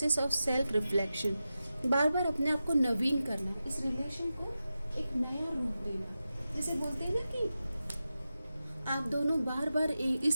of self reflection. बार बार अपने आप को नवीन करना, इस रिलेशन को एक नया रूप देना। जैसे बोलते हैं ना कि आप दोनों बार बार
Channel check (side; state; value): both; inverted; correlation -0.92